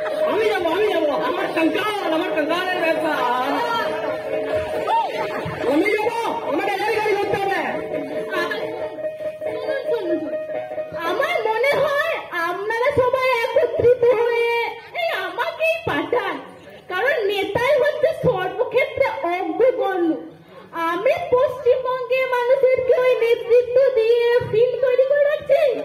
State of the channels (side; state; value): both; identical; correlation 1.00